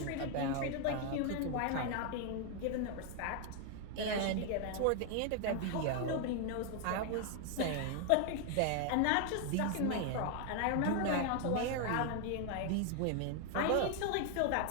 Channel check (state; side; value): different; both; correlation 0.00